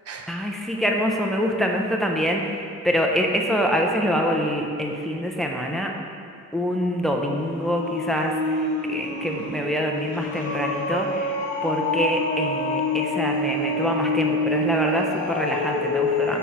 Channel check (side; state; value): both; normal; correlation 0.40